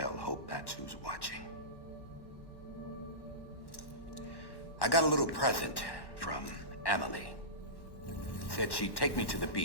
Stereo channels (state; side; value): late; right; 1.1 ms